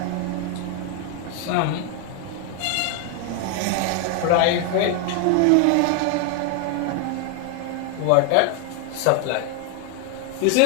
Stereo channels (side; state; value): both; different; correlation 0.01